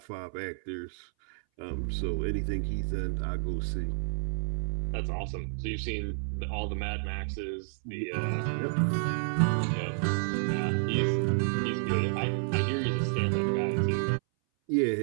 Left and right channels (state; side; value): silent; left; 58 dB below the other